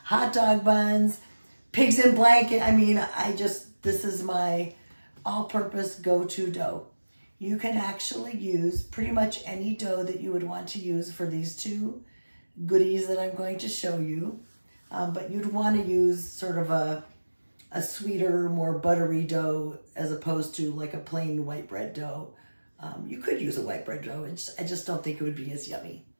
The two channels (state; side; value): inverted; both; correlation -1.00